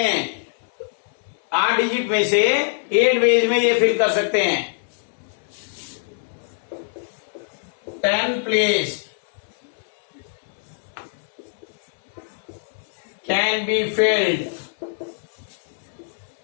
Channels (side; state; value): right; silent; 63 dB below the other